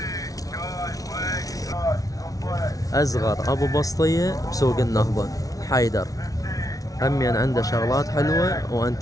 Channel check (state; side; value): late; right; 0.18 ms